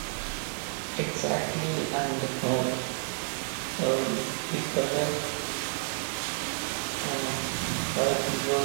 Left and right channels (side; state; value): left; silent; digital silence